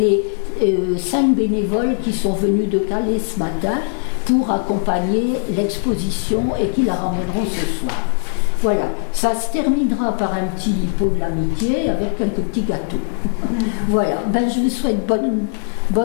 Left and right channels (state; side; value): silent; right; digital silence